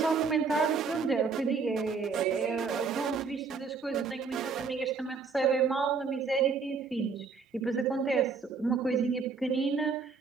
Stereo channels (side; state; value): left; quieter; 5.1 dB